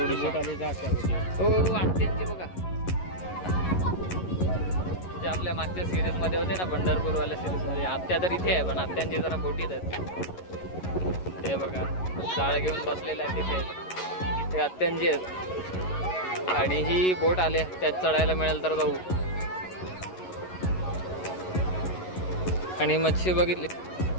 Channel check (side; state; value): right; late; 11 ms